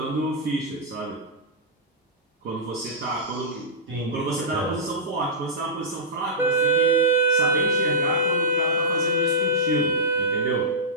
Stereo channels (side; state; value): both; normal; correlation -0.13